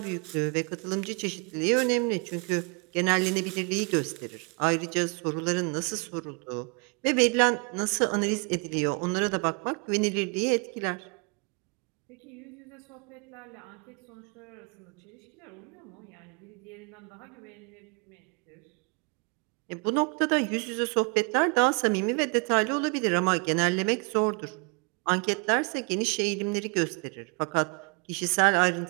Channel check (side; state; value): left; quieter; 33.0 dB